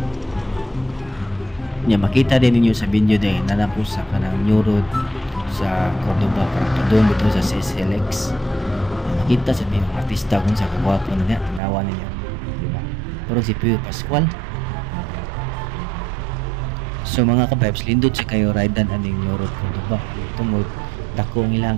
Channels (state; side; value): drops out; left; at 11.6 s